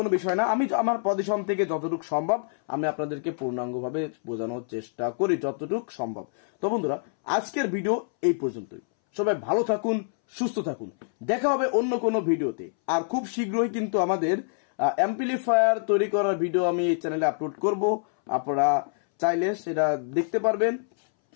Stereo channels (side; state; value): right; silent; 61 dB below the other